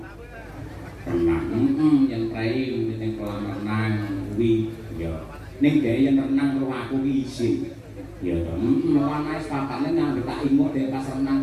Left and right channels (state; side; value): identical; both; correlation 1.00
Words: Renang. Yen prei ning kolam renang kuwi ya. Ning dhek yen renang karo aku ki isin. Ya to. Ana wis papane nang tak imut dhek pas